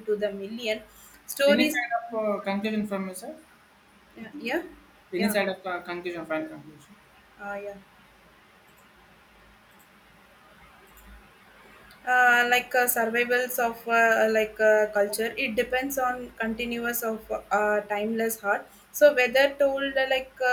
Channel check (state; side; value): identical; both; correlation 1.00